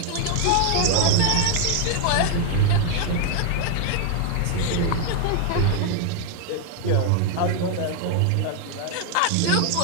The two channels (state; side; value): different; both; correlation 0.00